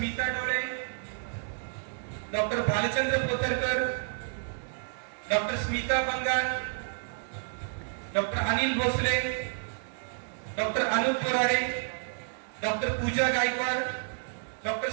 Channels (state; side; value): silent; left; 58 dB below the other